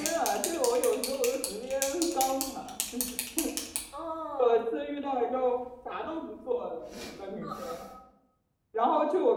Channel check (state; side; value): identical; both; correlation 1.00